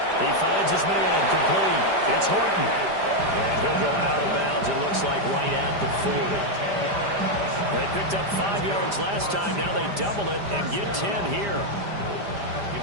He finds his man, complete. It's Horton. And he'll go out of bounds, it looks like right at the 40. They picked up 5 yards last time. Now they double it and get 10 here.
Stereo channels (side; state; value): left; late; 5.0 ms